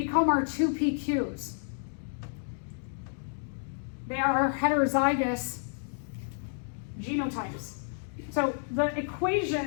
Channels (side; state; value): right; silent; digital silence